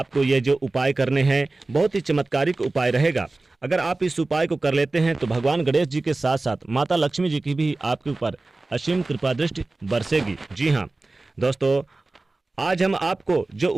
ये जो उपाय करने हैं बहुत ही चमत्कारिक उपाय रहेगा। अगर आप इस उपाय को कर लेते हैं तो भगवान गणेश जी के साथ साथ माता लक्ष्मी जी की भी आपके ऊपर असीम कृपा दृष्टि बरसेगी। जी हाँ दोस्तों, आज हम आपको जो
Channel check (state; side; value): quieter; left; 3.2 dB